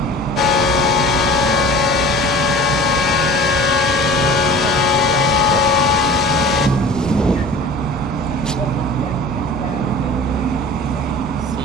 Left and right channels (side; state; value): both; normal; correlation 0.41